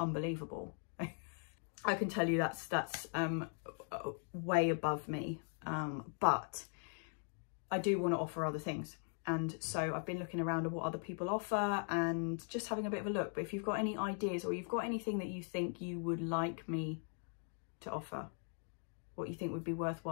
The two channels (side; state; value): right; silent; 51 dB below the other